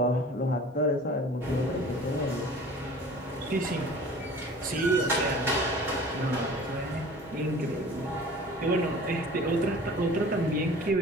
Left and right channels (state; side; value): normal; both; correlation 0.44